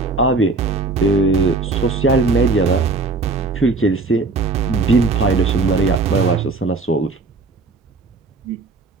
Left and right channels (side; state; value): left; quieter; 3.6 dB